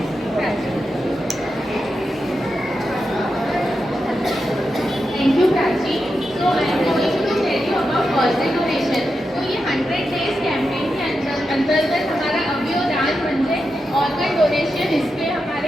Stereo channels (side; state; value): both; normal; correlation 0.88